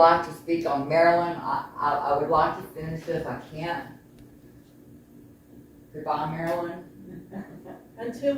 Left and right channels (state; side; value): identical; both; correlation 1.00